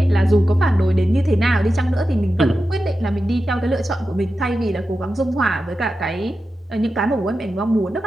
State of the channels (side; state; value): both; normal; correlation 0.91